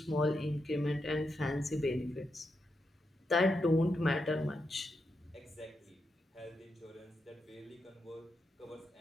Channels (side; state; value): both; normal; correlation 0.85